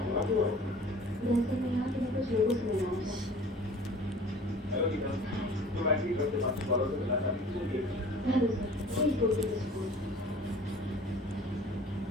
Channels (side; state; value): both; normal; correlation 0.46